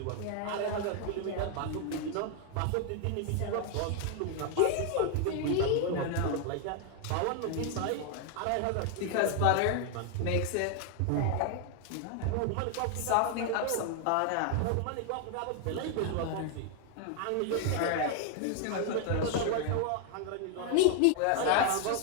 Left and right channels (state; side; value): different; both; correlation 0.00